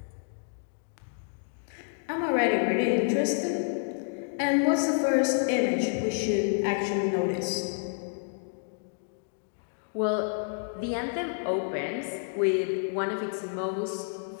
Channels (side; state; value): right; silent; digital silence